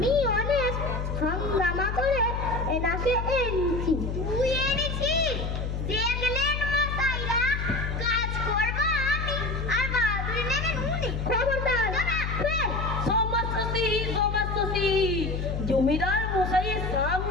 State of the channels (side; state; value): left; noise; hum, 3 dB below the sound